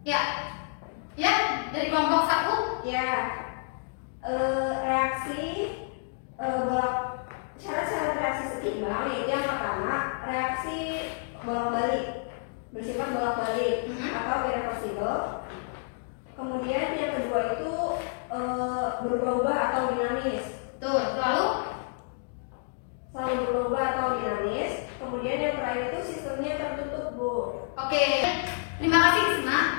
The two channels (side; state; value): right; silent; digital silence